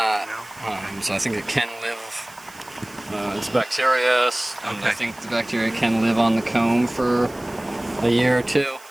No? So I think it can live. It's bacterious, and I think the bacteria can live on the comb for a year or two.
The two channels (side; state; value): right; noise; hiss, 23 dB below the sound